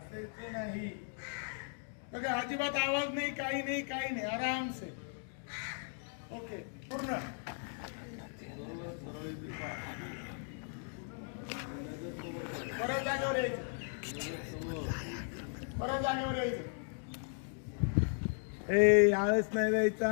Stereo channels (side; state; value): right; silent; 53 dB below the other